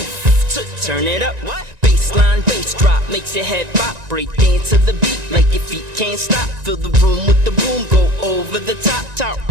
turn it up. Bassline, bass drop makes your head pop. Break dance to the beat like your feet can't stop. Fill the room with the boom, go over the top.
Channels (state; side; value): late; left; 1.9 ms